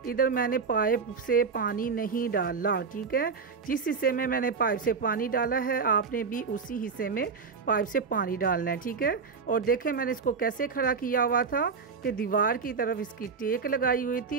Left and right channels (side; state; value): left; quieter; 5.3 dB